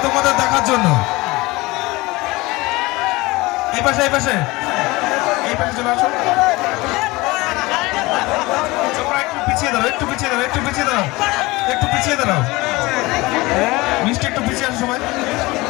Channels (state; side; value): quieter; right; 21.8 dB